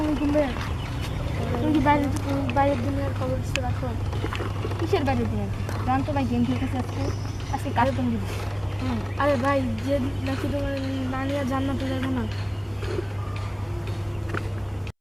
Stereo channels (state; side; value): identical; both; correlation 1.00